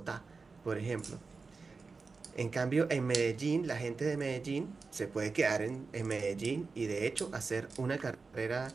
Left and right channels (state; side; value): quieter; left; 4.4 dB